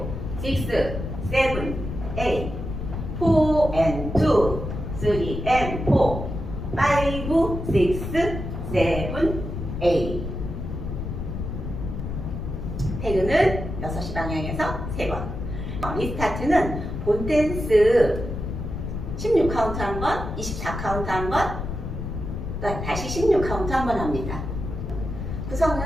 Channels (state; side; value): noise; left; rumble, 5 dB below the sound